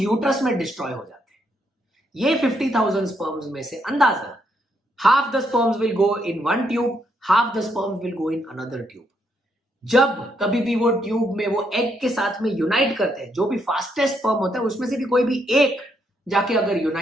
में डिस्ट्रॉय हो जाते हैं. ये 50,000 स्पर्म्स में से अंदाजा half the sperms will go in one tube, half the sperms will go in another tube. जब कभी भी वो ट्यूब में वो एग के साथ में यूनाइट करते हैं, जो भी फास्टेस्ट स्पर्म होता है उसमें से भी कोई भी एक जाके अगर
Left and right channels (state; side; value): normal; both; correlation 0.76